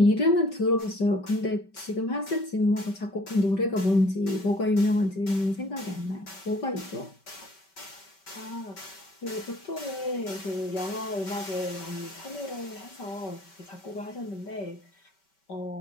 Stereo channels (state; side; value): late; right; 5.2 ms